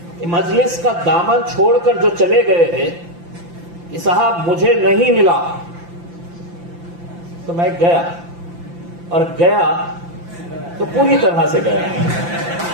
کہ مجلس کا دامن چھوڑ کر جو چلے گئے ہیں کہ صاحب مجھے نہیں ملا تو میں گیا، اور گیا تو پوری طرح سے گیا،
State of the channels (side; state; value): left; late; 5.8 ms